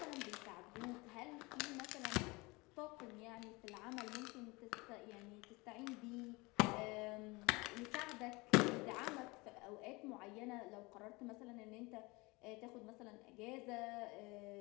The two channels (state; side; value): quieter; right; 24.7 dB